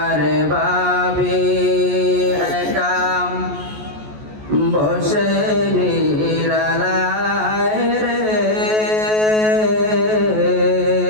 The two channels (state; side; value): late; left; 14 ms